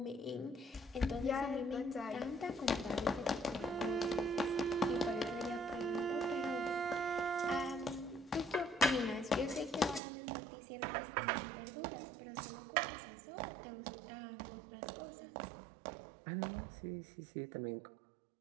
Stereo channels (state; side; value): drops out; left; at 10.0 s